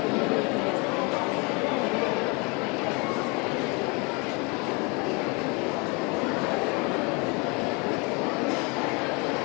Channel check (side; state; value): right; quieter; 30.0 dB